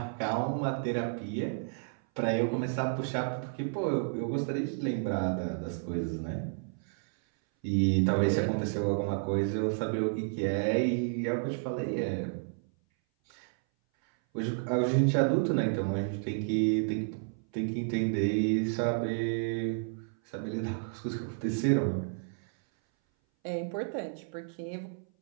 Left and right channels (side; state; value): left; silent; 57 dB below the other